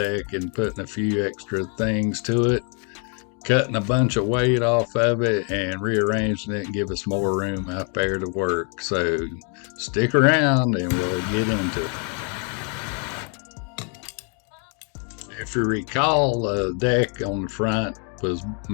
and putting a few extra things to it, cutting a bunch of weight off of it, and rearranging it and give us more room out there to work. So stick around and we'll get into it. If you recall, the deck on the front was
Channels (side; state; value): right; quieter; 39.1 dB